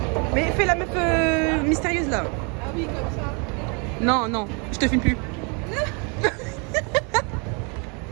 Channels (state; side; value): quieter; left; 34.1 dB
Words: Mais fais la meuf mystérieuse là. Ah oui, comme ça. Non, non, je te filme plus.